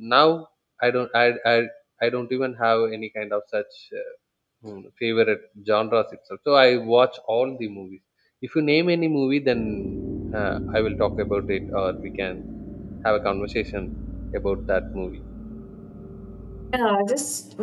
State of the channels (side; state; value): both; identical; correlation 1.00